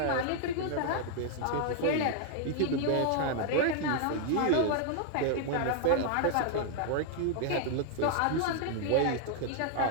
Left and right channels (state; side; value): different; both; correlation 0.00